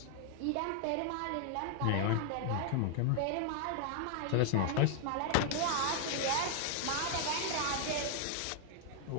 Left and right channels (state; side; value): different; both; correlation 0.00